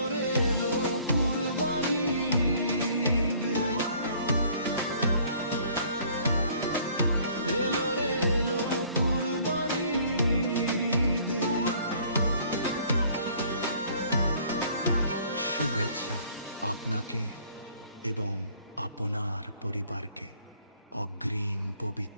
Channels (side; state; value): both; inverted; correlation -0.57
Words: রে এলো কুরবানির ঈদ, এলো রে এলো কুরবানির ঈদ। শুভেচ্ছা আপনাকে এবং আপনার পরিবারকে অগ্রিম